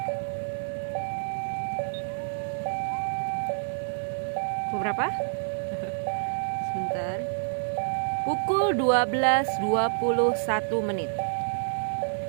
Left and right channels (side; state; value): left; silent; digital silence